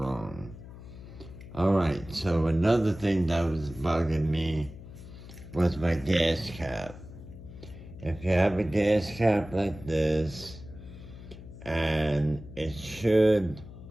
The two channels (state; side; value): noise; left; hum, 15 dB below the sound